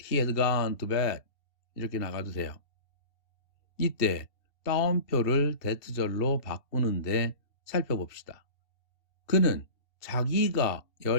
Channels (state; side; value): late; right; 2.7 ms